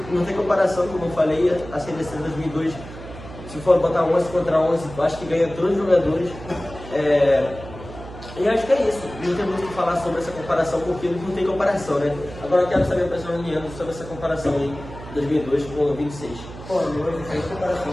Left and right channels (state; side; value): noise; right; hum, 14 dB below the sound